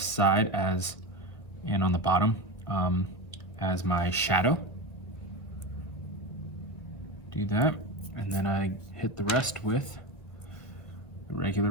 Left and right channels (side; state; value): right; late; 1.6 ms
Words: side as, and on the bottom as my shadow. Do that, and then I hit the rest with the regular